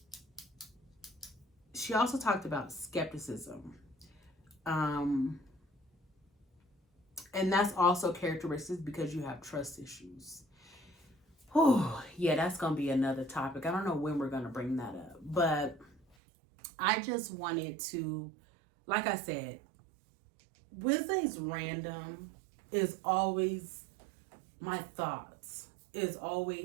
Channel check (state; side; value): drops out; left; at 16.2 s